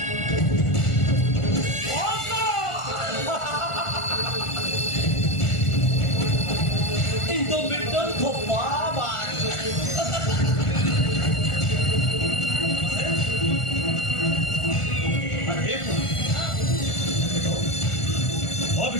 인도밀도 더 봐봐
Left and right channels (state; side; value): late; right; 1.4 ms